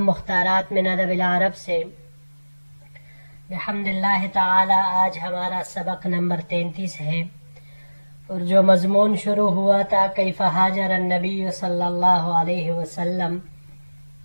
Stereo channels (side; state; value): both; inverted; correlation -1.00